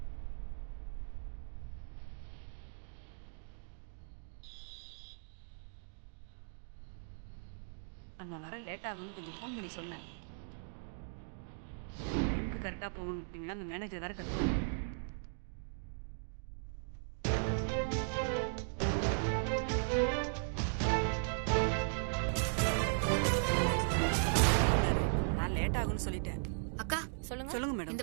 நான் வர லேட் ஆகும்னு கொஞ்சம் ஃபோன் பண்ணி சொன்னேன். டைமுக்கு கரெக்டாக போகணும் அப்படின்னா அந்த மேனேஜர் வேறு கட்டுவோம். நான் லேட் ஆகும்னு சொல்லிட்டேன். அக்கா சொல்லுங்க. சொல்லுங்க மேடம்.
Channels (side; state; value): left; silent; digital silence